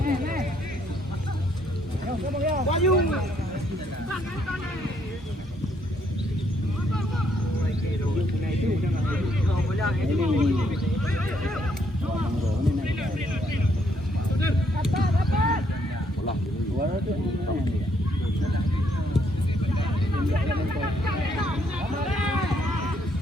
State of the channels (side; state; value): both; normal; correlation 0.71